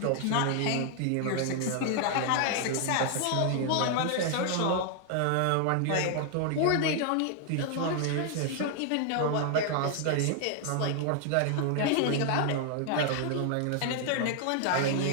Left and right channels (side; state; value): both; different; correlation 0.00